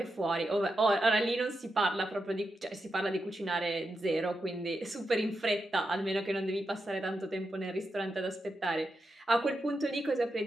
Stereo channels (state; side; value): normal; both; correlation 0.87